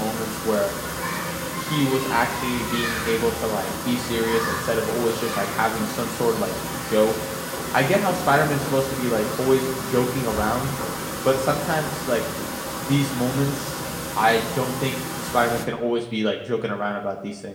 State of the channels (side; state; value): both; identical; correlation 1.00